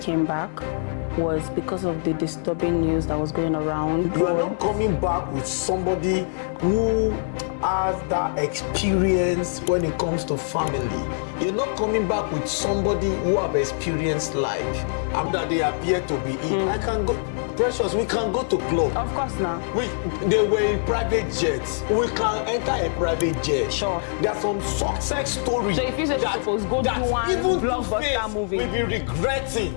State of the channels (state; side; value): silent; right; digital silence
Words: came back was because of the disturbing news that was going around. You are not coming back with somebody who has that experience when it comes to family. You're not coming back with somebody who have experienced life. And that they appear to be in. I can go, Precious, we can go to club. Of course now. They were in private jets. We can enter a private jet. Sure. There are some success stories. So if you say that, suppose go do one even blockbuster movie, we'll be regretting.